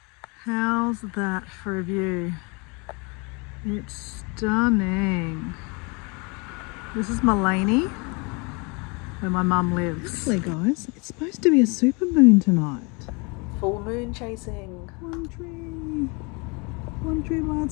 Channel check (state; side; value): quieter; right; 30.5 dB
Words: How's that for a view? It's stunning. This is Mullaney, where my mum lives. Actually, guys, it's supposed to be a super moon tonight. Full moon chasing. One tree by